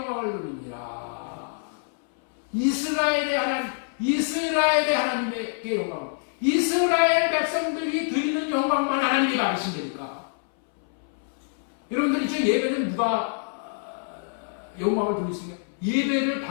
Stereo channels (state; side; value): silent; right; 60 dB below the other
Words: 돌리니라. 이스라엘의 하나님께 영광을, 이스라엘 백성들이 드리는 영광만 하나님이 받으신다니까. 여러분들 이제 예배는 누가 영광을 돌릴 수 있냐?